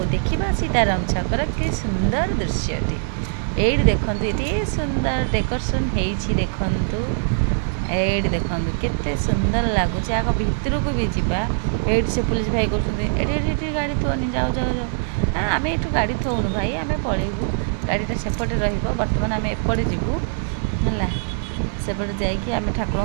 ଦେଖିବା ସୀତାରାମ ଛକର କି ସୁନ୍ଦର ଦୃଶ୍ୟଟି। ଏଇଠି ଦେଖନ୍ତୁ ଏଠି ସୁନ୍ଦର ଡେକୋରେସନ୍ ହେଇଛି। ଦେଖନ୍ତୁ ଏଇଠି ଦେଖନ୍ତୁ କେତେ ସୁନ୍ଦର ଲାଗୁଛି। ଆଗ ଭିତରକୁ ବି ଯିବା। ଏଇଠି ସେ ପୁଲିସ ଭାଇ କରୁଛନ୍ତି, ଏଠି ଏଠି ଏଠି ଗାଡ଼ି ଥୋନି, ଯାଉ ଯାଉ ଯାଉ। ଆମେ ଏଠୁ ଗାଡ଼ି ଥୋଉନୁ ଭାଇ, ଆମେ ପଳେଇବୁ। ଗାଡ଼ିଟା ସେପଟେ ରହିବ। ବର୍ତ୍ତମାନ ଆମେ ଏପଟେ ଯିବୁ ହେଲା। ସେପଟେ ଯାଇକି ଆମେ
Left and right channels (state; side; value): silent; left; digital silence